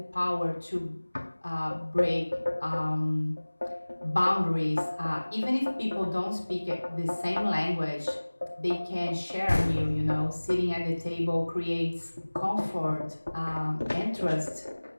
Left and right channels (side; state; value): both; inverted; correlation -1.00